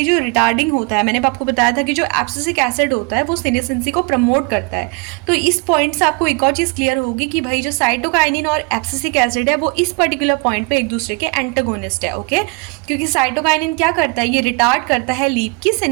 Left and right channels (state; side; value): quieter; left; 30.1 dB